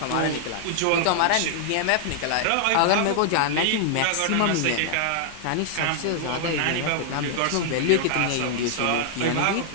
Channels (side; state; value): both; different; correlation -0.01